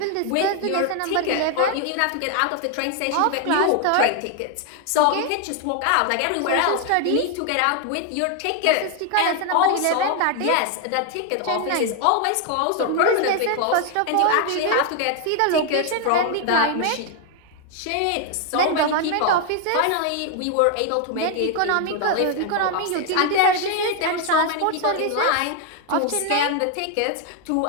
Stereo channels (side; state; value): both; different; correlation 0.00